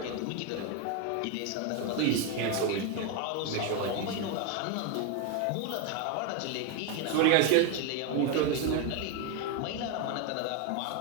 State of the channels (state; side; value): different; both; correlation 0.02